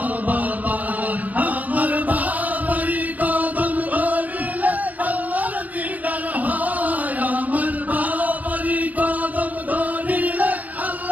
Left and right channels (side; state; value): left; late; 0.078 ms